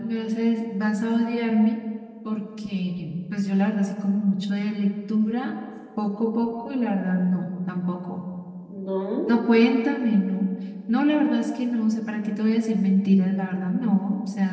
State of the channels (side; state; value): both; identical; correlation 1.00